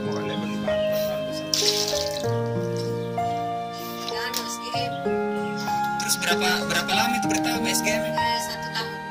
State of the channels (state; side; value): identical; both; correlation 1.00